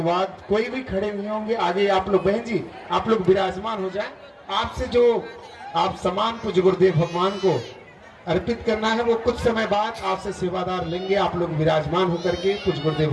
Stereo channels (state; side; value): identical; both; correlation 1.00